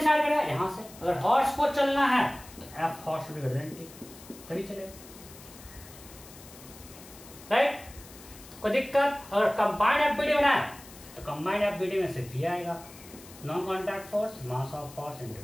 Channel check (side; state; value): left; noise; hiss, 19 dB below the sound